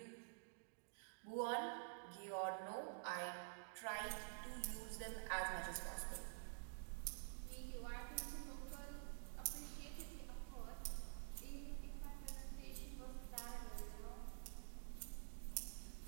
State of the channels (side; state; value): left; silent; digital silence